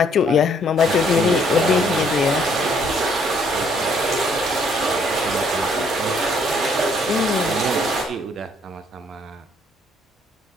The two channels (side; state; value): both; normal; correlation 0.65